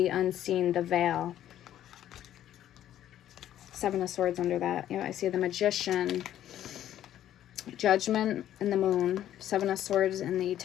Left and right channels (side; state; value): right; quieter; 11.7 dB